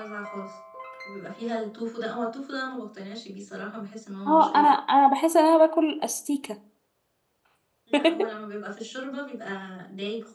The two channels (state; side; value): identical; both; correlation 1.00